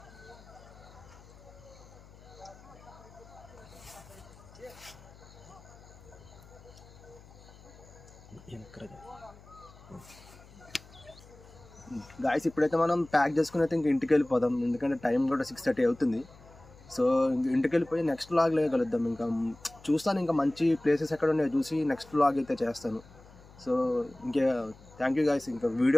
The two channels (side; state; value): left; noise; hum, 22 dB below the sound